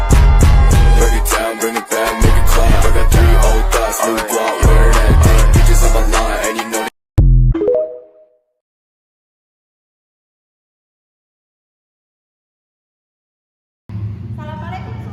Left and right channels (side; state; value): both; identical; correlation 1.00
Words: Break it down, bring it back, make it clap. I got 3 old thoughts, new guap, wear that dick. Bitches on my line, and you know. Assalamualaikum